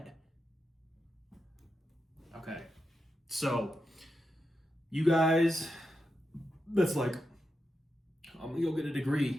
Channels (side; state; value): both; normal; correlation 0.87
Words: Okay, so you guys, that's like, I'm gonna go get a